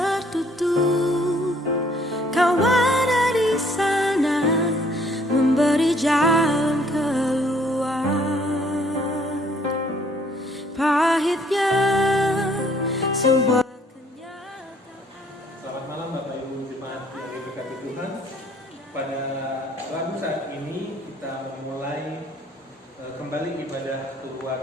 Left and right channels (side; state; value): both; normal; correlation 0.62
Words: kau ada di sana memberi jalan keluar. Pahitnya sebuah kenyataan. Selamat malam Bapak Ibu Jemaat yang diberkati Tuhan. Pada Rabu saat ini kita memulai kembali ibadah